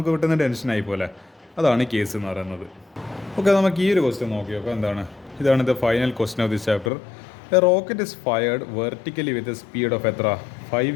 പെട്ടെന്ന് ടെൻഷനായി പോലെ. അതാണ് കേസ് എന്ന് പറയുന്നത്. ഓക്കെ, നമുക്ക് ഈ ഒരു ക്വസ്റ്റ്യൻ നോക്കി നോക്കാം. എന്താണ് ഇതാണ് the final question of this chapter. A rocket is fired vertically with a speed of എത്ര? 5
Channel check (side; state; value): right; drops out; at 6.9 s